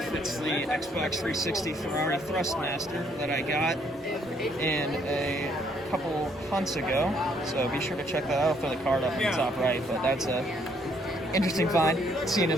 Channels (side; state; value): both; normal; correlation 0.68